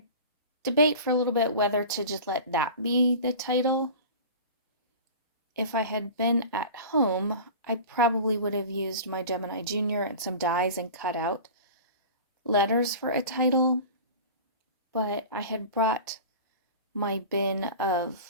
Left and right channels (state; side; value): inverted; both; correlation -0.36